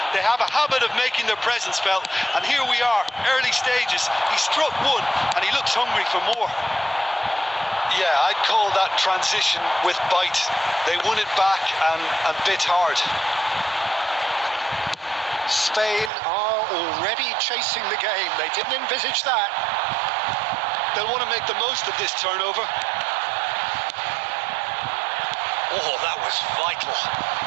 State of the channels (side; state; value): left; drops out; at 16.1 s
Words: They have a habit of making their presence felt, and here we are, early stages. He struck one, and he looks hungry for more. Yeah, I'd call that transition with bite. They won it back and bit hard. Spain are already chasing the game. They didn't envisage that. They'll want to make the most of this turnover. Oh, that was vital.